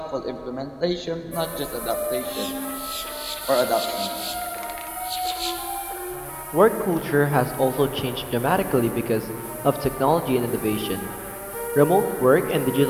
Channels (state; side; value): identical; both; correlation 1.00